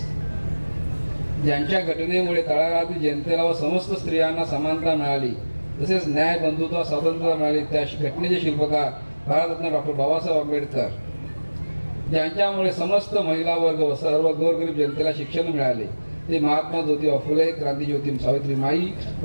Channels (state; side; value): inverted; both; correlation -1.00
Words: ज्यांच्या घटनेमुळे तळागाळातील जनतेला व समस्त स्त्रियांना समानता मिळाली, तसेच न्याय, बंधुत्व, स्वातंत्र्य मिळाले, त्या घटनेचे शिल्पकार भारतरत्न डॉक्टर बाबासाहेब आंबेडकर, ज्यांच्यामुळे समस्त महिला वर्ग व सर्व गोरगरीब जनतेला शिक्षण मिळाले, ते महात्मा ज्योतिबा फुले, क्रांतिज्योती सावित्रीमाई,